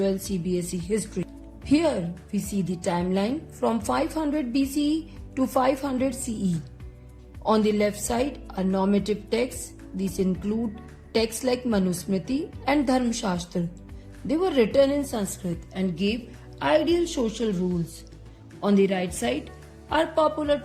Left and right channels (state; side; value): identical; both; correlation 1.00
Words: CBSE history. Here we see the timeline from 500 BCE to 500 CE. On the left side are normative texts. These include texts like Manusmriti and Dharmashastra. They were written in Sanskrit and gave ideal social rules. On the right side are popular